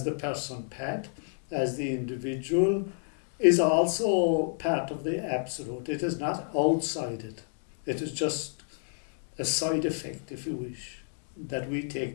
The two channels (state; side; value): silent; right; digital silence